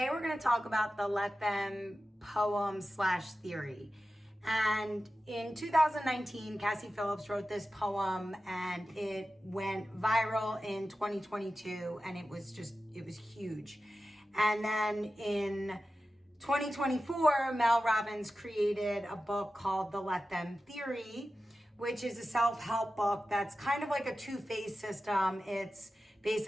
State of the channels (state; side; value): normal; both; correlation 0.94